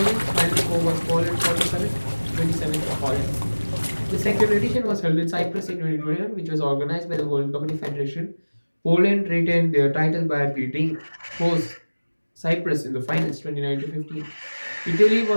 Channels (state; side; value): inverted; both; correlation -1.00